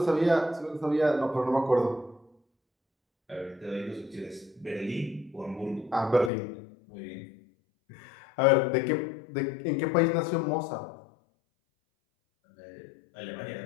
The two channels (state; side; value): drops out; right; at 6.3 s